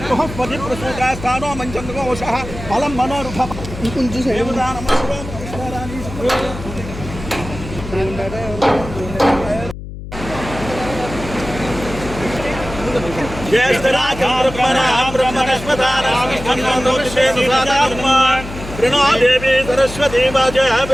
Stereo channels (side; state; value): left; noise; hum, 11 dB below the sound